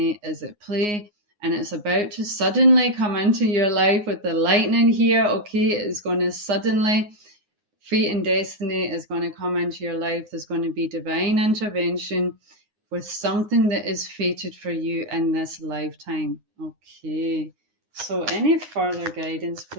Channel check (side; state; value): left; late; 9.6 ms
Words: is at play, and it's about to suddenly come into your life with the lightning here. Okay, it is going to suddenly, fate and destiny is going to come into your life. There's going to be divine intervention with something that is fated for you in this lifetime. Okay, so any further guidance,